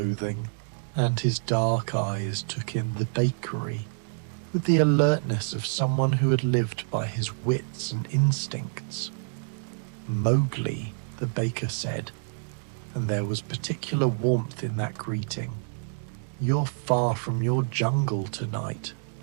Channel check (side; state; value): left; silent; digital silence